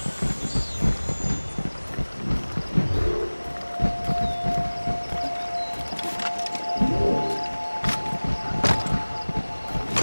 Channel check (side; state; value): both; inverted; correlation -1.00